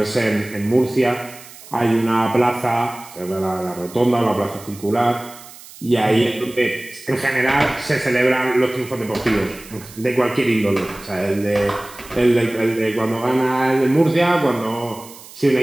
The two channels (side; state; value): right; noise; hiss, 19 dB below the sound